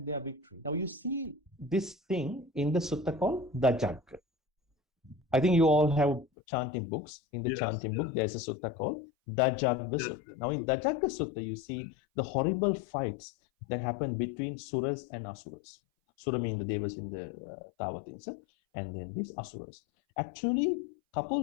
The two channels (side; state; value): right; drops out; at 6.2 s